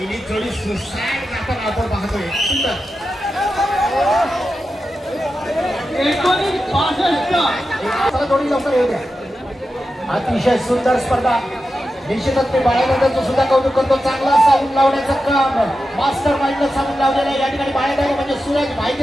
जोडी सुसाईड करताना आपण पाहतोय. सुंदर 1965 जोडी लवकर येऊ द्या. अतिशय सुंदर स्पर्धा. निश्चितच मी बाळादादाचं सुद्धा कौतुक करतो. चांगला साऊंड लावण्याचं काम मास्टर माइंडला साऊंड लावलेलं आहे. या ठिकाणी बाळादादा म्हणजे सूरज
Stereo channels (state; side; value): normal; both; correlation 0.91